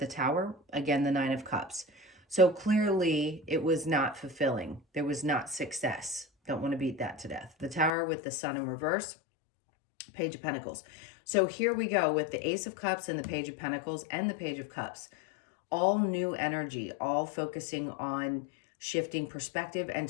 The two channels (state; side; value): drops out; right; at 7.9 s